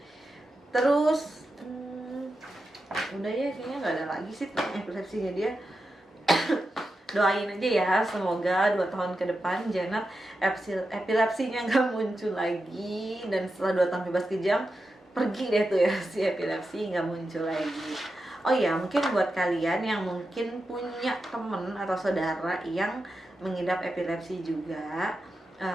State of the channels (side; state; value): both; normal; correlation 0.90